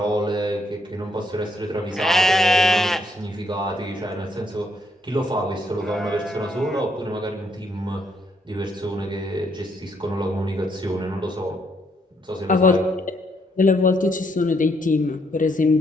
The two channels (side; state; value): both; normal; correlation 0.73